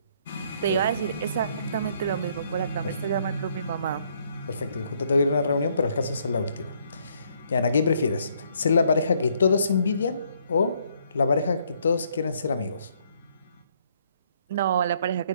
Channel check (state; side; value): inverted; both; correlation -0.68